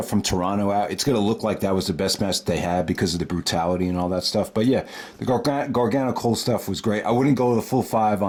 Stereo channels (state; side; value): identical; both; correlation 1.00